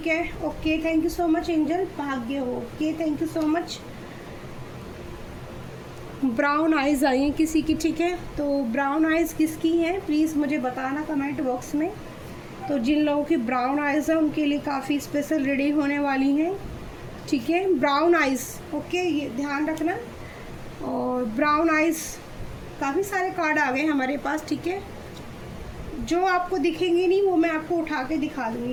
है। Okay, thank you so much angel, भाग्य हो, okay, thank you so much. Brown eyes आई हैं किसी की, ठीक है। तो ब्राउन आइज़ किसकी हैं प्लीज़ मुझे बताना कमेंट बॉक्स में। तो जिन लोगों की ब्राउन आइज़ है उनके लिए काफ़ी स्पेशल रीडिंग होने वाली हैं, ठीक है। ब्राउन आइज़, ओके, ये ध्यान रखना। और ब्राउन आइज़, काफ़ी सारे कार्ड आ गए हमारे पास, ठीक है। जो आपको दिखेंगे नहीं वो मैं आपको उठा के दिखा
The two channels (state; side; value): identical; both; correlation 1.00